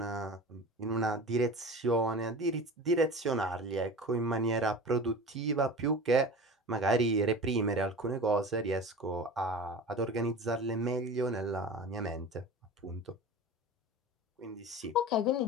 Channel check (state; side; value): normal; both; correlation 0.34